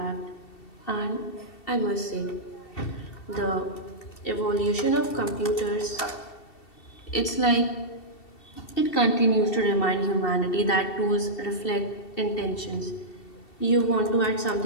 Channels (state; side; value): late; right; 2.7 ms